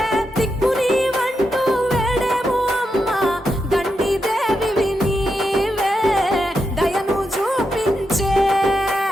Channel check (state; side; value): normal; both; correlation 0.85